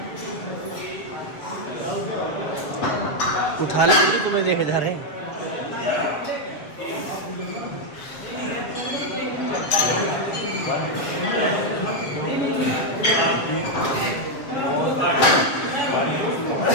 उठा ले मुझे, तुम्हें देखे जा रहे हैं।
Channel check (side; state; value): right; late; 7.1 ms